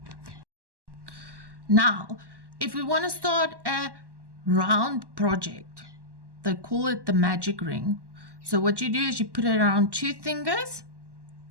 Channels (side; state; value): left; late; 1.1 ms